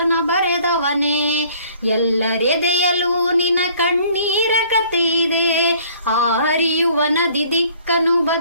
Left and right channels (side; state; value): both; inverted; correlation -0.56